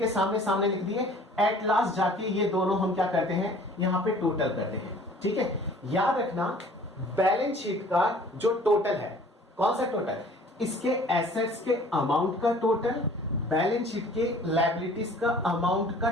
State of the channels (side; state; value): both; normal; correlation 0.51